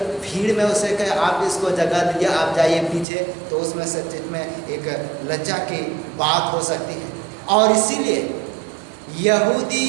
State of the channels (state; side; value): drops out; left; at 3.1 s